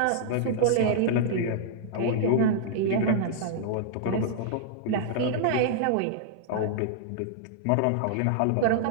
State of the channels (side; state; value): both; different; correlation -0.01